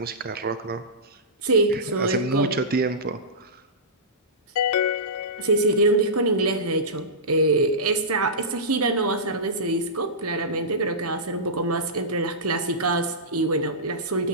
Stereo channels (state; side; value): normal; both; correlation -0.18